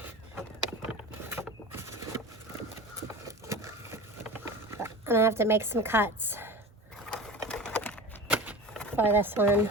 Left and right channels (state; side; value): normal; both; correlation 0.34